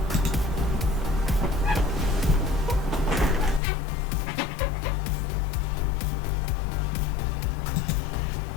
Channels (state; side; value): drops out; right; at 3.6 s